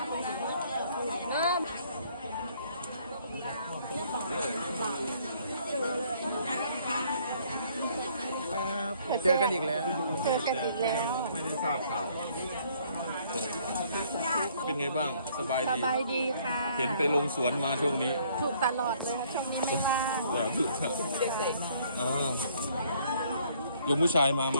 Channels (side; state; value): both; inverted; correlation -0.63